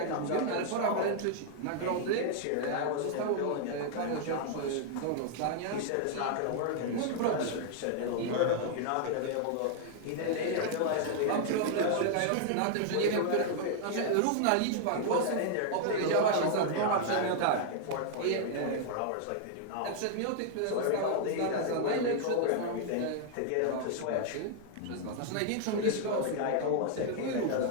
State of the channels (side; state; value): both; different; correlation 0.00